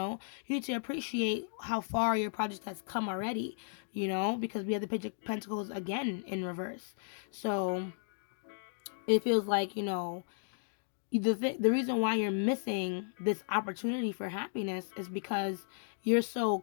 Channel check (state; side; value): silent; right; digital silence